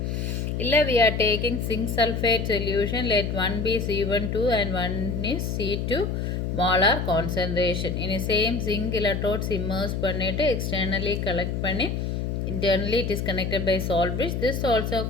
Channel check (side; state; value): left; noise; hum, 2 dB below the sound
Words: Illa we are taking zinc sulfate solution, let one be C12 and one is C2 molar concentration. In the same zinc electrodes immerse pannite externally collect panni, internally it is connected by salt bridge. This also